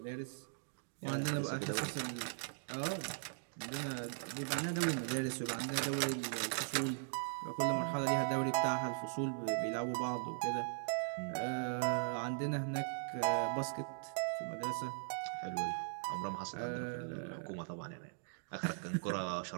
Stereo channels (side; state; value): left; silent; digital silence